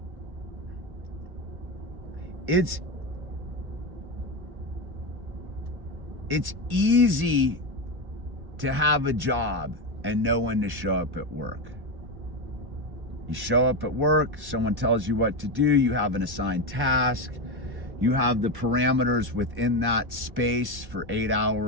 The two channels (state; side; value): late; left; 1.1 ms